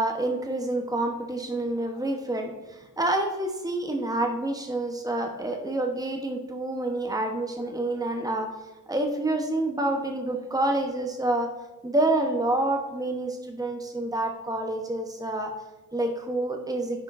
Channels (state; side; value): normal; both; correlation 0.53